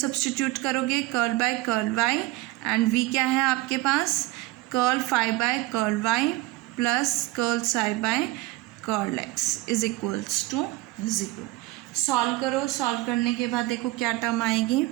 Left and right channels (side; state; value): left; quieter; 19.1 dB